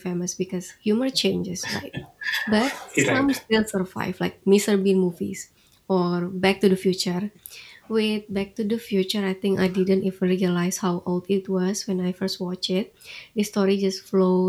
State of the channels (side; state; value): both; identical; correlation 1.00